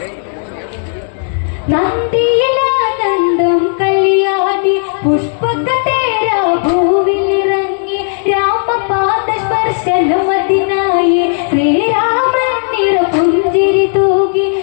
നന്ദിയിലാനന്ദം കല്യാണി പുഷ്പകതേര ഭൂവിലിറങ്ങി രാമപാദ സ്പർശനമതിനായി ശ്രീരാമൻ നിറപുഞ്ചിരി തൂകി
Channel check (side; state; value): right; silent; 71 dB below the other